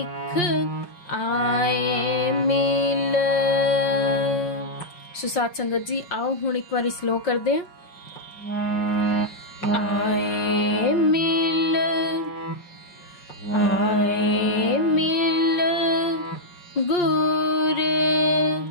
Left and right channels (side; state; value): right; late; 5.6 ms